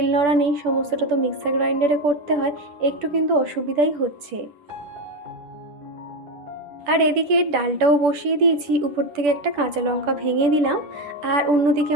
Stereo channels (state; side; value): late; left; 10 ms